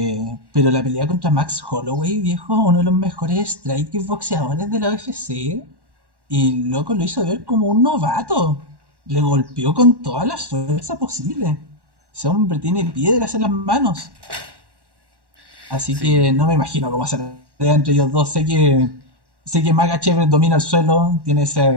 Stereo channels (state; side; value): late; left; 1.1 ms